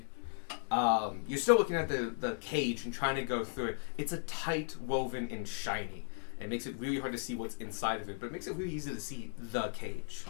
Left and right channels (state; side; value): silent; right; digital silence